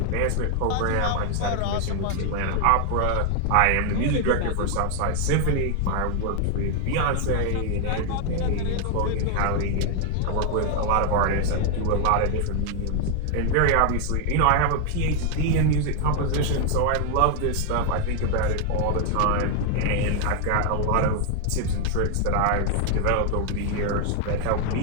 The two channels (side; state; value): both; different; correlation 0.00